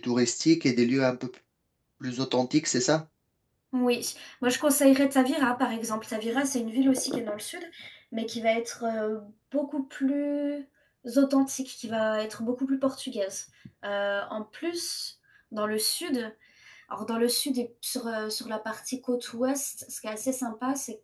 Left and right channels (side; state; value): both; identical; correlation 1.00